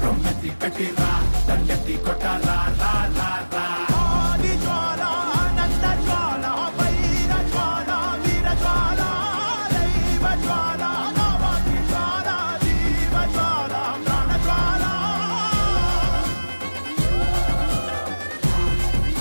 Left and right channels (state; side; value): inverted; both; correlation -1.00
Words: రొమ్మెత్తి పెట్టిరా దండెత్తి కొట్టరా